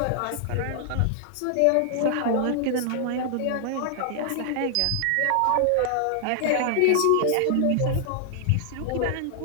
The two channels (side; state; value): both; different; correlation 0.00